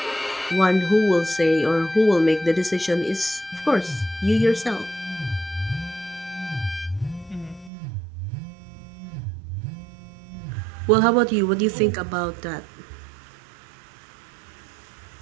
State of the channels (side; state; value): left; drops out; at 7.7 s